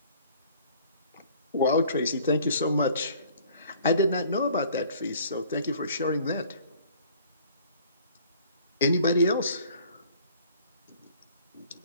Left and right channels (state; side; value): inverted; both; correlation -0.53